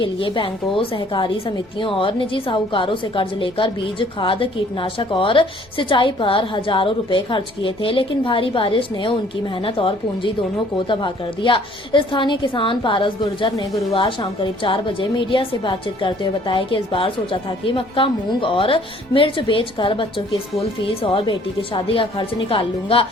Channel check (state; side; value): noise; left; rumble, 29 dB below the sound